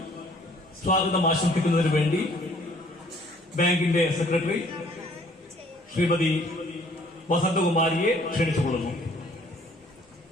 സ്വാഗതം ആശംസിക്കുന്നതിന് വേണ്ടി ബാങ്കിന്റെ സെക്രട്ടറി ശ്രീമതി വസന്തകുമാരിയെ ക്ഷണിച്ചുകൊള്ളുന്നു.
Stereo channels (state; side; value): normal; both; correlation 0.59